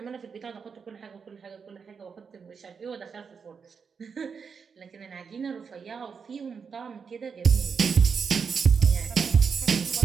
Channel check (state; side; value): quieter; left; 6.0 dB